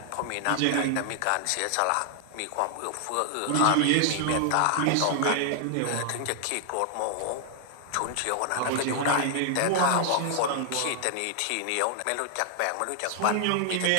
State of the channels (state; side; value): different; both; correlation 0.00